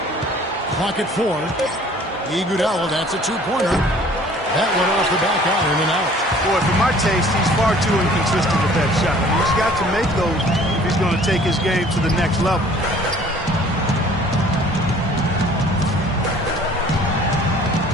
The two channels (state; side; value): normal; both; correlation 0.52